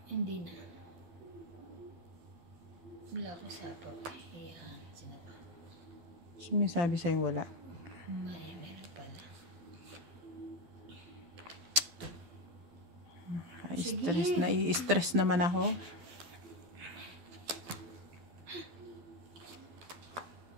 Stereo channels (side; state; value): left; late; 12 ms